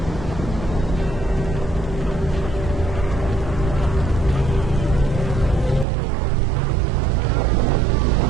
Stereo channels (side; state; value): left; drops out; at 5.9 s